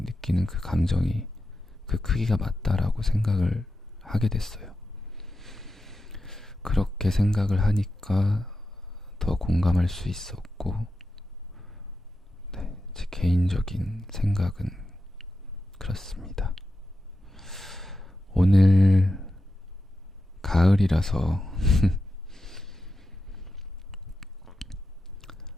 그 감정이 그 크기가 맞다라고 생각을 하게 됐어요. 그렇게 생각을 하니까 더 공감할 수 있었고, 네, 제 개인적인 생각은 그렇습니다. 오늘 가을이라서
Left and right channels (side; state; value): both; normal; correlation 0.90